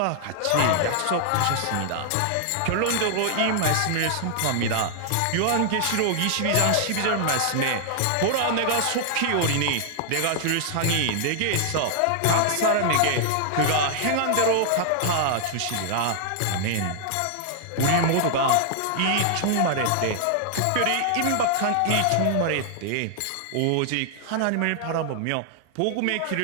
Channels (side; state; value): both; different; correlation 0.00